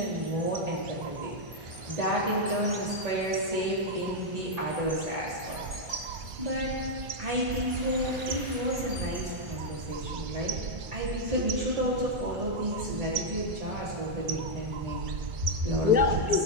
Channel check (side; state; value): left; late; 1.8 ms